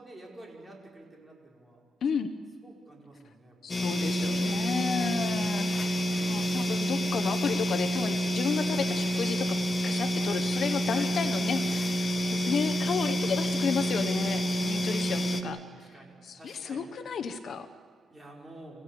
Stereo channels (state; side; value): normal; both; correlation 0.87